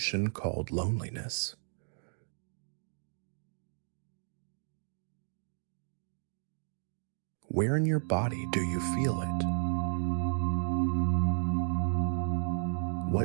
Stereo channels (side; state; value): left; silent; digital silence